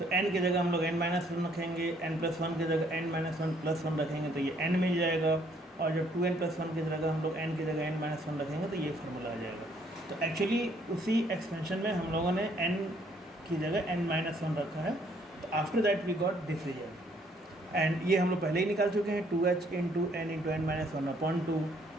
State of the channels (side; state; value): both; normal; correlation 0.65